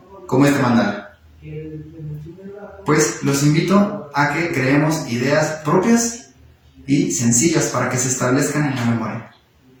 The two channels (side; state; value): both; identical; correlation 1.00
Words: como este mandala. Pues los invito a que creemos ideas propias y sencillas para que se establezcan en la memoria.